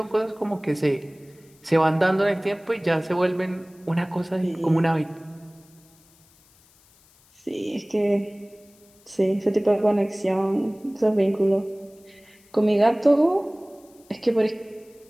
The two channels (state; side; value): noise; left; hiss, 30 dB below the sound